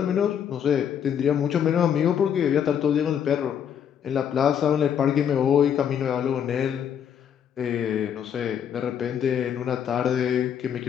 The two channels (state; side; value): quieter; right; 8.6 dB